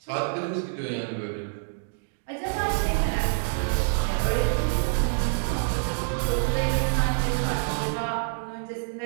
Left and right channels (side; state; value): left; silent; digital silence